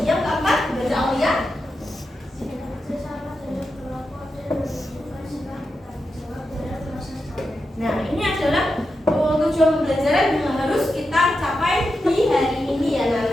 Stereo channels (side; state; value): both; normal; correlation 0.88